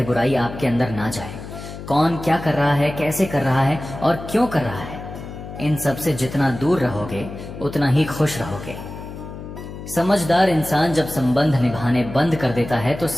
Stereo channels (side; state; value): left; noise; hum, 11 dB below the sound